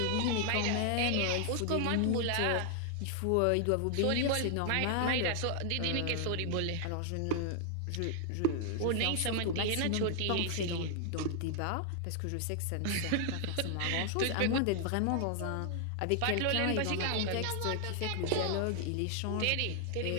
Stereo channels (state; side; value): different; both; correlation 0.00